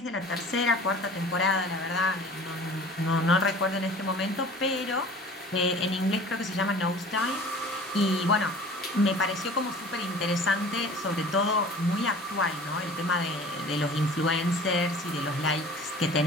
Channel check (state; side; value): normal; both; correlation 0.44